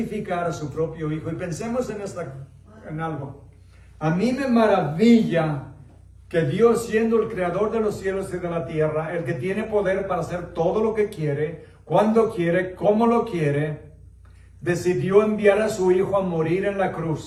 a su propio Hijo. Y pensemos en algo. A mí me maravilla que Dios, siendo el creador de los cielos y de la tierra, el que tiene poder para hacer todo lo que quiere, cuando quiere, como lo quiere, decidió enviar a su Hijo a morir en la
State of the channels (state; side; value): identical; both; correlation 1.00